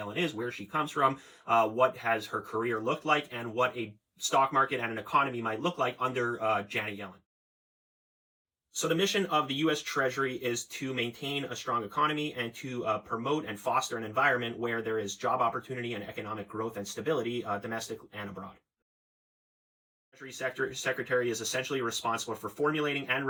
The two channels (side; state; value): both; identical; correlation 1.00